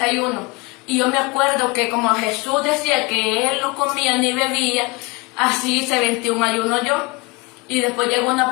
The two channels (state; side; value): quieter; right; 25.9 dB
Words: Y yo me acuerdo que como Jesús decía que Él no comía ni bebía, así hice 21 ayunos yo. Y después llegó una